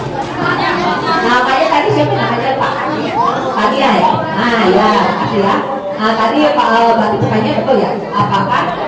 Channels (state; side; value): identical; both; correlation 1.00